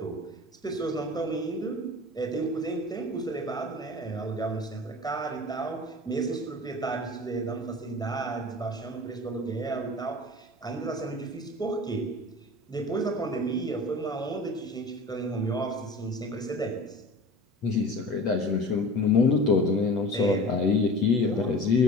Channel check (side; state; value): both; normal; correlation 0.39